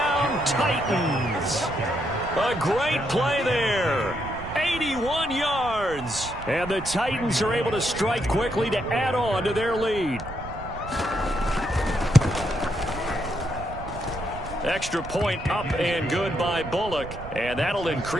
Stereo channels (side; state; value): right; noise; rumble, 12 dB below the sound